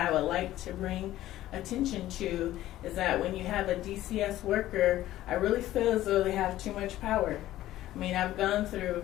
would like to bring attention to is that when you have a DCS worker, I really feel as though they have too much power. I mean, I've gone through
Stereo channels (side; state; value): right; quieter; 14.5 dB